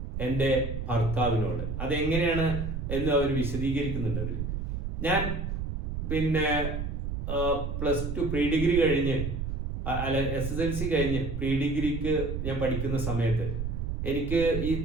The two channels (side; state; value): right; noise; rumble, 3 dB below the sound